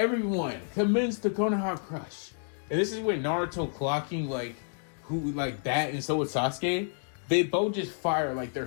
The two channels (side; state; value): right; silent; digital silence